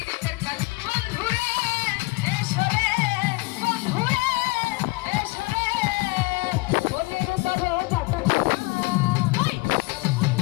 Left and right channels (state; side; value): quieter; right; 24.1 dB